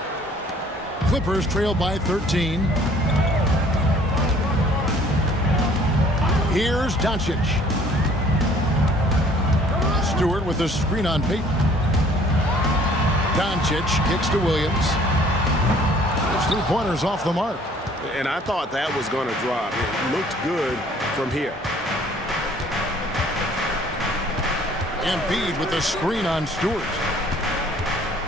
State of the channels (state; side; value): normal; both; correlation 0.56